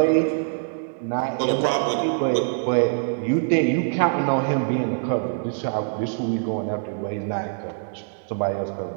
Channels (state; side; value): silent; left; digital silence